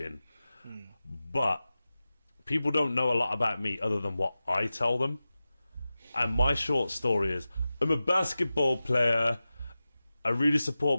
But people don't know a lot about me other than what I tell them. And my short story is I'm a basketball player, I really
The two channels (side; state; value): both; inverted; correlation -0.95